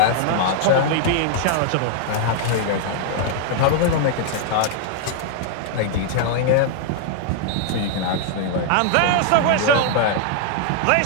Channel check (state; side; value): different; both; correlation -0.01